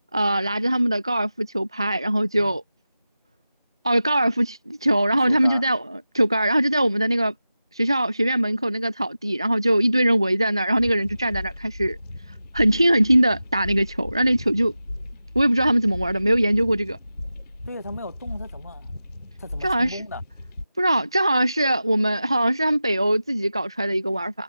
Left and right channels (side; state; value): both; inverted; correlation -0.93